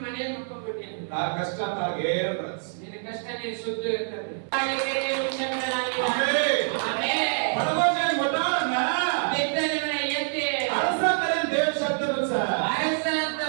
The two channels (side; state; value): left; silent; 61 dB below the other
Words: ಮನೆಯಲ್ಲಿ ಮಕ್ಕೊಂಡ್ಬಿಟ್ಟಿ ಅಂತ. ತಾ ಕಷ್ಟ ತಾ ಗೇರ್ ರಸ್ ನಿನ್ನ ಕಷ್ಟ ನೀನು ಸುದ್ದು ಇರ್ತದೆ. ಬಾಳಿಕೆರೆ ವಿಷಯಗಳಾಗಿವೆ. Amen amen. ಪರಮೋಜನ ಮೊದಲನ ಬಿದ್ದ ನಿಮ್ಮನ್ನ ಎತ್ತಿ ಅರಸ ತರ ದೇವ ಶಬ್ದನು ಸರ್ ಅರಸ ಅಂತ